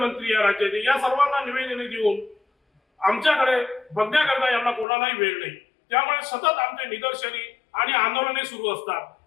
या राज्याचे या सर्वांना निवेदने देऊन आमच्याकडे बघण्याकरता यांना कोणालाही वेळ नाही। त्यामुळे सतत आमचे निदर्शने आणि आंदोलने सुरू असतात।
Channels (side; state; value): right; drops out; at 4.9 s